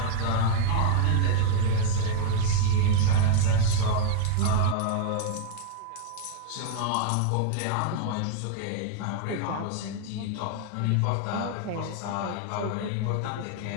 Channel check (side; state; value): both; different; correlation 0.00